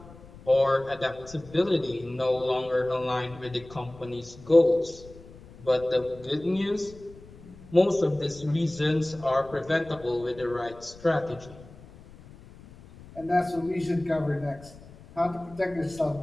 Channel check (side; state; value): left; noise; rumble, 20 dB below the sound